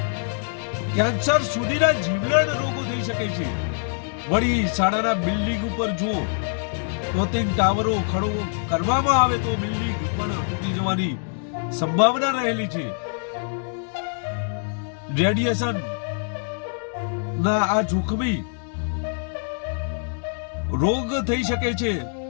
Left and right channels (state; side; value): silent; right; 62 dB below the other